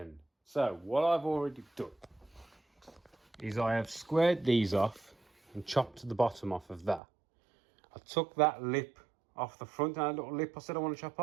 So what I've already done is I have squared these off and chopped the bottom off of that. I took that lip off the front, and that little lip I said I want to chop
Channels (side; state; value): left; drops out; at 7.0 s